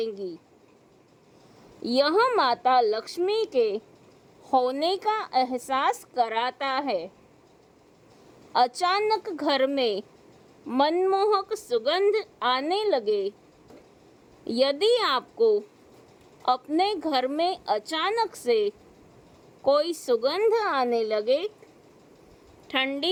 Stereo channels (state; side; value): identical; both; correlation 1.00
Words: यह माता लक्ष्मी के होने का एहसास कराता है। अचानक घर में मनमोहक सुगंध आने लगे। यदि आपको अपने घर में अचानक से कोई सुगंध आने लगे,